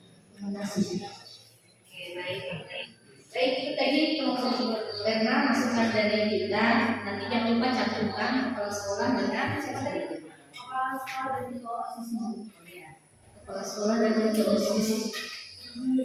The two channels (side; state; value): both; identical; correlation 1.00